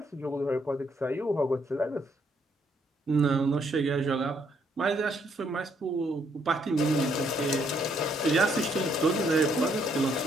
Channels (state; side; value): normal; both; correlation 0.71